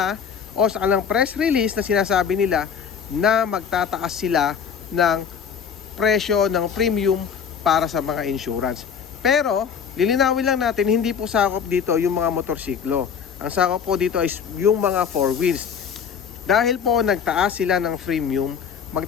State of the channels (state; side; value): quieter; right; 7.1 dB